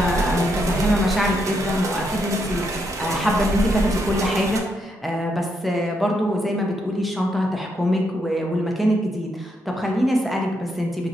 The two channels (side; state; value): both; normal; correlation 0.79